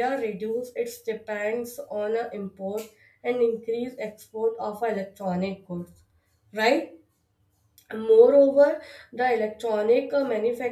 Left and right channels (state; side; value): identical; both; correlation 1.00